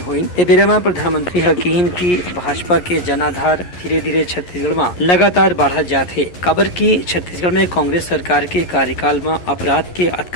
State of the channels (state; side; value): late; right; 11 ms